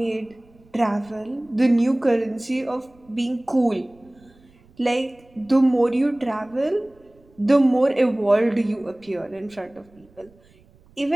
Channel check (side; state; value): right; noise; rumble, 29 dB below the sound